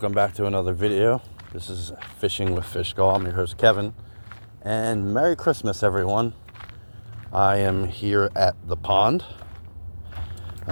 back to another video. This is Fishing with Fishgall. I'm your host Kevin, and Merry Christmas everyone. I am here at the pond.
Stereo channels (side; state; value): both; inverted; correlation -1.00